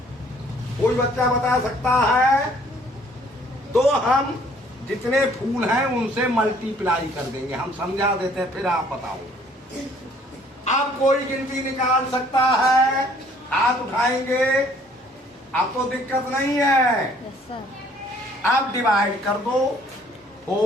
कोई बच्चा बता सकता है? तो हम जितने फूल हैं उनसे मल्टीप्लाई कर देंगे, हम समझा देते हैं, फिर आप बताओ। अब कोई गिनती निकाल सकता है? हाथ उठाएंगे। अब तो दिक्कत नहीं है। अब डिवाइड कर दो।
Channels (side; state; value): both; normal; correlation 0.59